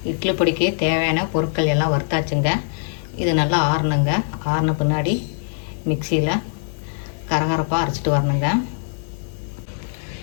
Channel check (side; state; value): right; silent; 59 dB below the other